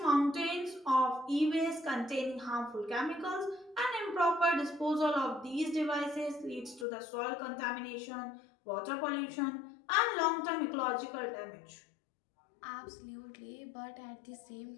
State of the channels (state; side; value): drops out; right; at 6.9 s